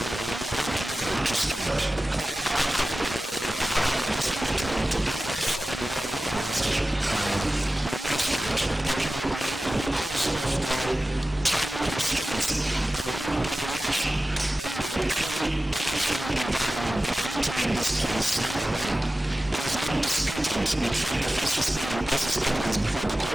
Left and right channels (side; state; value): both; normal; correlation 0.95